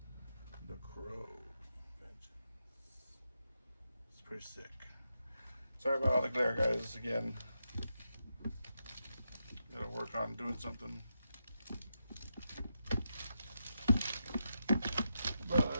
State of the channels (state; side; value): inverted; both; correlation -0.86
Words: The Crow. It's pretty sick. Sorry about all the glare, guys. Again, gotta work on doing something. But